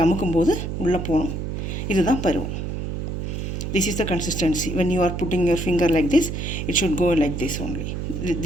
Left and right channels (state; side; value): noise; right; hum, 4 dB below the sound